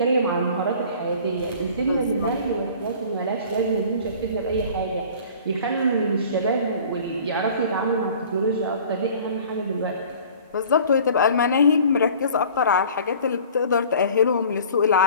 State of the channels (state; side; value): inverted; both; correlation -0.47